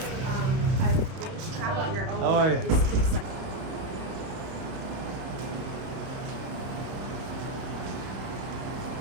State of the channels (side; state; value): left; late; 31 ms